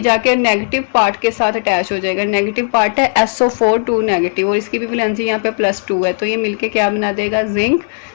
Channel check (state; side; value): silent; right; 69 dB below the other